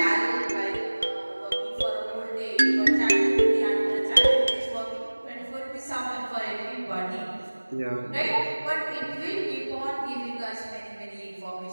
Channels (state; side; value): inverted; both; correlation -1.00